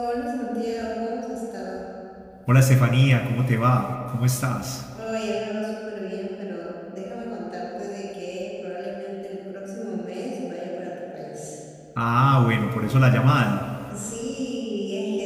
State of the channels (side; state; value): both; identical; correlation 1.00